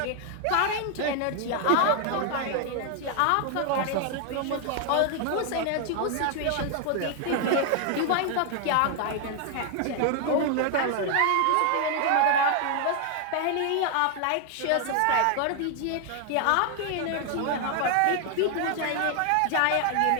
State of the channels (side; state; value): both; different; correlation 0.00